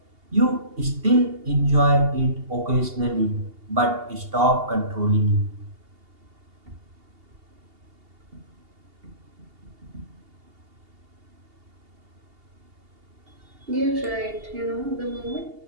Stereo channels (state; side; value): late; left; 2.8 ms